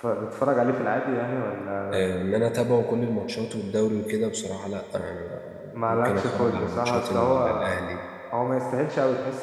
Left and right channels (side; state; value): both; identical; correlation 1.00